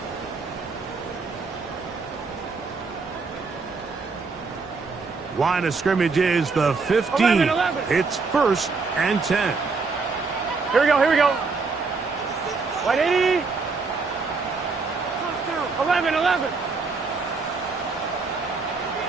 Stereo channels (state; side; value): quieter; left; 4.4 dB